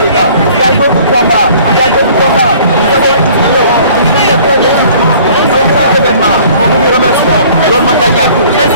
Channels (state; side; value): inverted; both; correlation -0.52